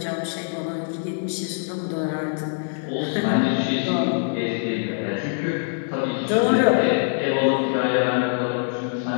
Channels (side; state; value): right; silent; 62 dB below the other